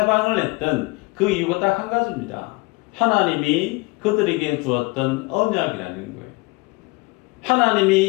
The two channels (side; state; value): right; quieter; 25.1 dB